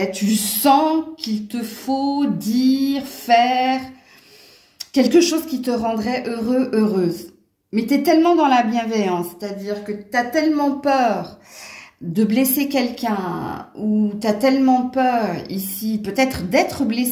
tu sens qu'il te faut dire, faire quelque chose qui te rendrait heureux, heureuse. Mais tu es tellement dans la bienveillance, c'est-à-dire que tu as tellement peur de blesser quelqu'un ou tu as tellement peur ici, peut-être d'être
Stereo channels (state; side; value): identical; both; correlation 1.00